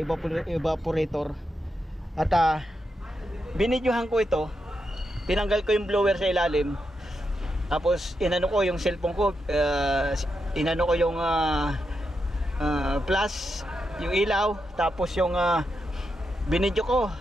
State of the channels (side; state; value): both; normal; correlation 0.85